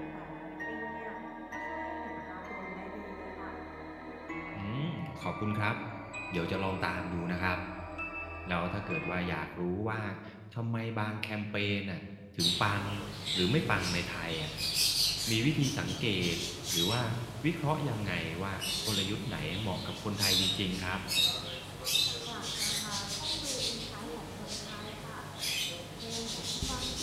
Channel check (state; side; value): identical; both; correlation 1.00